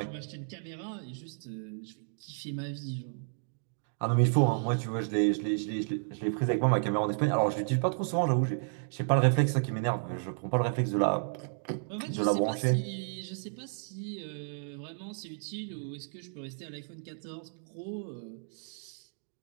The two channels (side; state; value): left; silent; digital silence